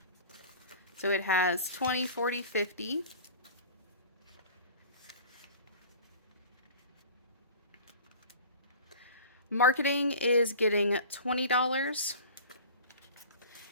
So it has 20, 40, 50. Marketing is getting $20.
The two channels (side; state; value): both; inverted; correlation -0.40